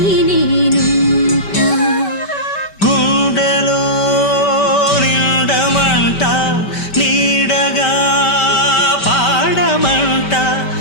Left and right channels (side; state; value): right; late; 5.1 ms